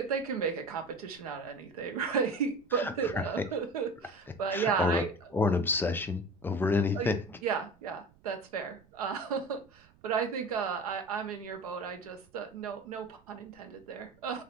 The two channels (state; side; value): noise; right; rumble, 29 dB below the sound